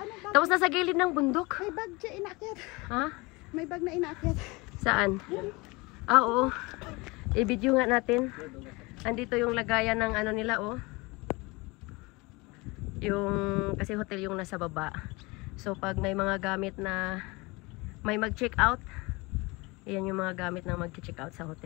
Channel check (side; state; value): right; quieter; 24.8 dB